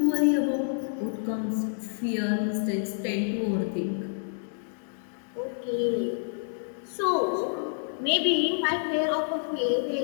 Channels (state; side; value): silent; right; digital silence